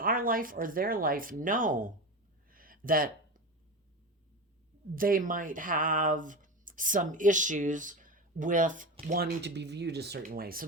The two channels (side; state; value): both; normal; correlation 0.23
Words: our life or their life know that they might have some issues with wanting to be viewed a certain way. So